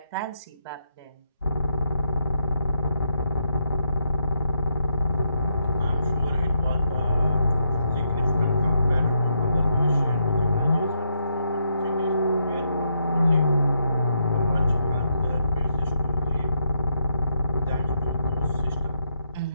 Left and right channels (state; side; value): inverted; both; correlation -0.79